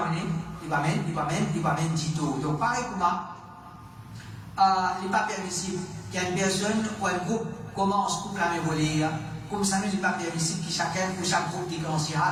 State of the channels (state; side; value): identical; both; correlation 1.00